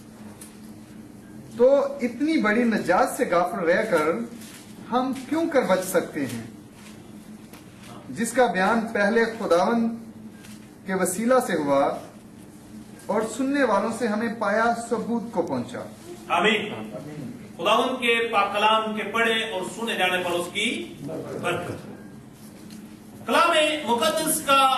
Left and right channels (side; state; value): both; identical; correlation 1.00